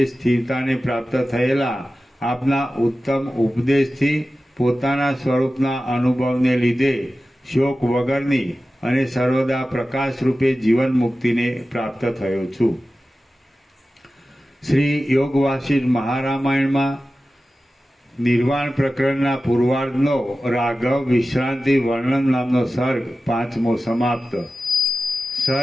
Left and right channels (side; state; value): both; normal; correlation 0.94